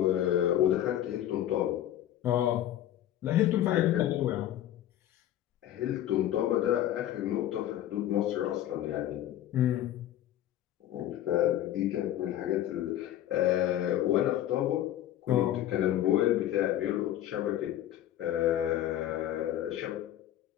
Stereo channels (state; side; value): quieter; right; 12.3 dB